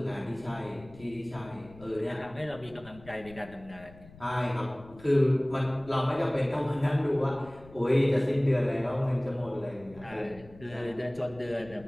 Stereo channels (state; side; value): noise; left; rumble, 21 dB below the sound